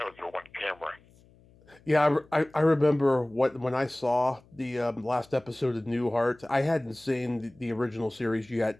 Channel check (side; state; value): left; noise; hum, 28 dB below the sound